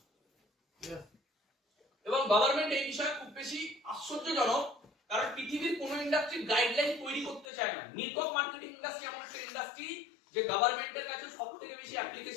এবং গভর্নমেন্ট এই বিষয়ে খুব বেশি আশ্চর্যজনক, কারণ পৃথিবীর কোন ইন্ডাস্ট্রি গাইডলাইন তৈরি করতে চায় না। নেটওয়ার্ক মার্কেটিং ইন্ডাস্ট্রি এমন একটা ইন্ডাস্ট্রি যে গভর্নমেন্টের কাছে সবথেকে বেশি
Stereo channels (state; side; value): drops out; right; at 7.5 s